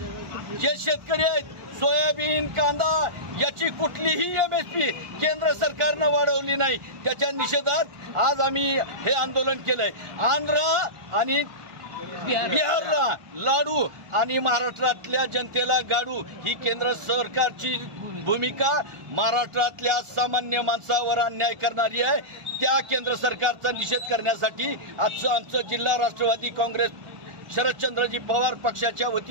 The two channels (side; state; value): left; late; 1.4 ms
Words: जे शेतकरी आहेत सोयाबीन कांदा याची कुठलीही MSP केंद्र सरकारनं वाढवली नाही। त्याच्या निषेधात आज आम्ही हे आंदोलन केलंय। आंध्र आणि बिहारला लाडू आणि महाराष्ट्रातल्या जनतेला गाडू ही केंद्र सरकारची भूमिका महाराष्ट्रातल्या सामान्य माणसावर अन्याय करणारी आहे। त्या केंद्र सरकारचा निषेध करण्यासाठी आमचं जिल्हा राष्ट्रवादी काँग्रेस शरदचंद्रजी पवार पक्षाच्या